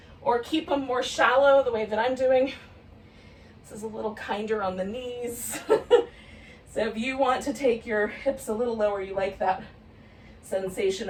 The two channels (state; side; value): identical; both; correlation 1.00